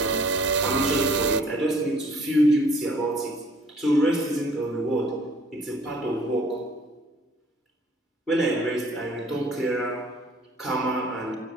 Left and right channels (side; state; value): both; normal; correlation 0.56